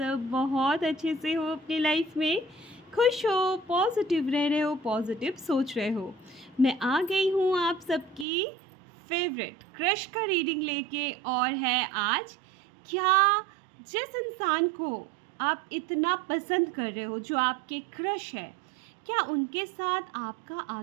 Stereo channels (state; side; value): drops out; left; at 8.2 s